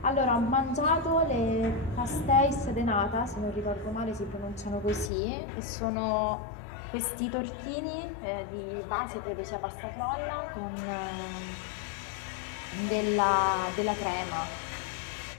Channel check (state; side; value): drops out; right; at 5.1 s